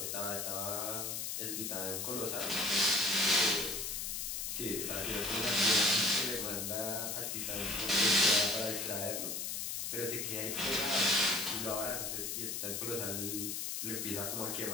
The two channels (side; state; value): left; noise; hiss, 3 dB below the sound